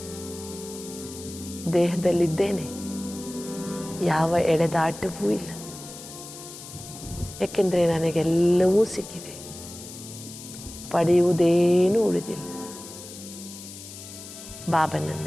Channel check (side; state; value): left; noise; hiss, 14 dB below the sound